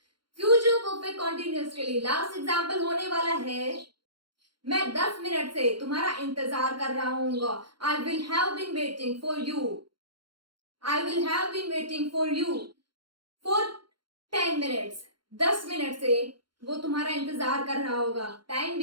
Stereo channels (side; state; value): left; late; 0.72 ms